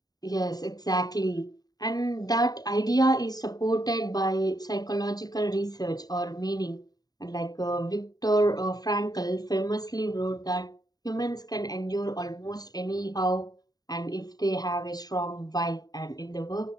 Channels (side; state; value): right; late; 0.18 ms